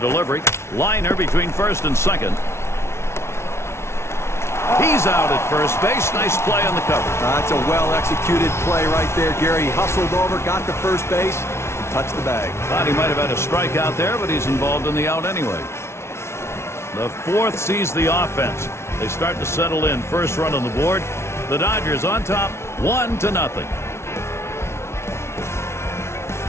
Liner between first and second. He's out at first base. Nice play on the cover. That's a well-executed play right there, Gary. He hustled over, got to first base, and touched the bag. Thought he might have had a strikeout there, but he's involved in the out anyway. The fourth sees the offense. They start to settle in. First run on the board. The Dodgers on top, 1-0.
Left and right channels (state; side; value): late; right; 0.13 ms